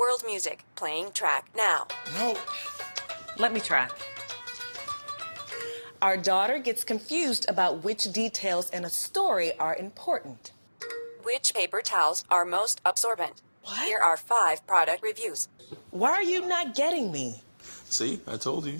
music, playing track now. No. Let me try. Our daughter gets confused about which details in a story are important. Which paper towels are most absorbent? What? Here are 5 product reviews. Why are you not getting me? See, I told you.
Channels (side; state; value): both; inverted; correlation -1.00